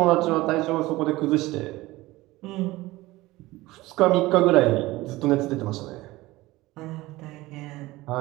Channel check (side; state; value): left; quieter; 19.1 dB